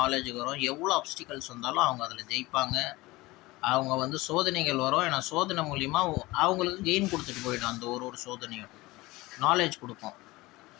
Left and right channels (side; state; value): right; quieter; 20.6 dB